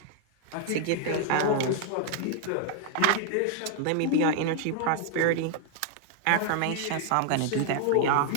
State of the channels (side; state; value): both; different; correlation 0.00